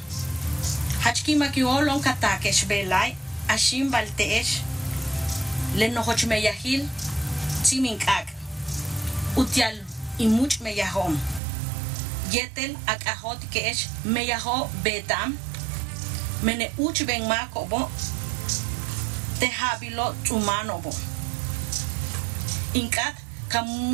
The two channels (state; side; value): drops out; left; at 11.4 s